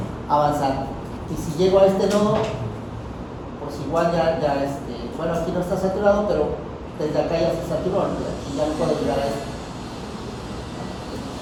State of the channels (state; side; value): identical; both; correlation 1.00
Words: avanzar. Y si llego a este nodo, pues igual bueno, aquí no está saturado, pero desde acá ya se saturó, ¿no? Y ya no puedo llegar a esto.